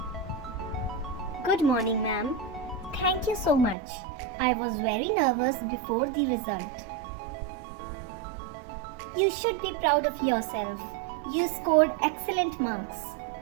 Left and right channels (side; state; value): left; drops out; at 3.8 s